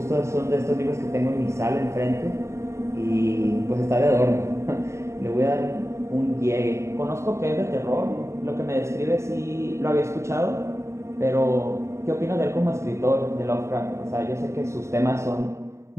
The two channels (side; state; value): left; late; 0.14 ms